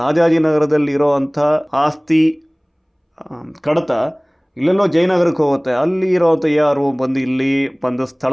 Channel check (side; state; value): both; identical; correlation 1.00